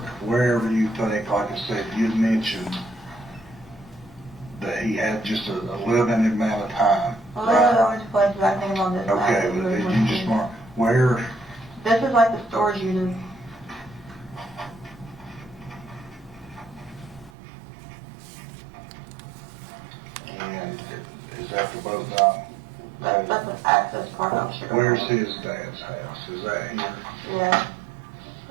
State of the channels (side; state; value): left; drops out; at 17.3 s